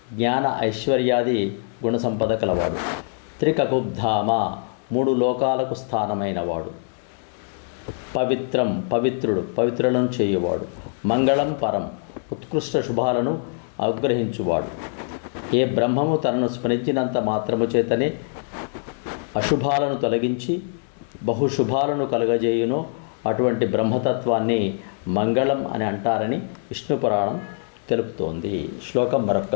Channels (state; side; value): silent; right; digital silence